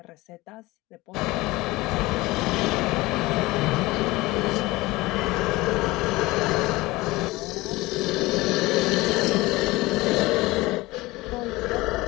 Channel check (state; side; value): quieter; right; 20.5 dB